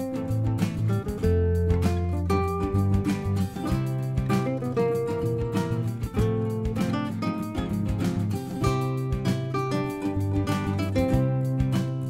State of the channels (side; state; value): both; identical; correlation 1.00